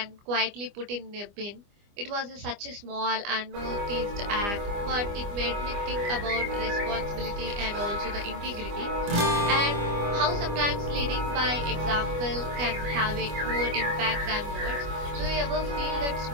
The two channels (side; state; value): left; late; 25 ms